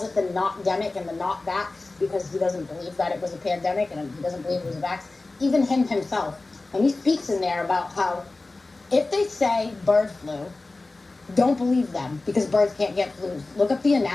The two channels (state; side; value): quieter; right; 3.2 dB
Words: it the not-demic and the not-vax because he doesn't believe that it was a pandemic and he doesn't believe it was a vax. Even him himself, and he speaks in there about how if they say bird flu, don't believe them because birds can't get flus. Look up the